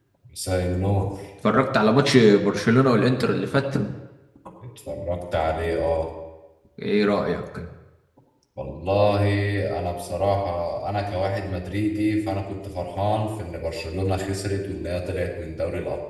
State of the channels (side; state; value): both; identical; correlation 1.00